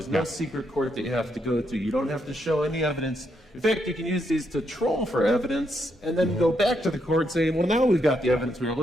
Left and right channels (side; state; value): both; normal; correlation 0.78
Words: no secret court that you have to go to. You don't have to show any evidence. In fact, you can use these to troll for evidence and then go back to the court saying, well, now we've got the evidence we were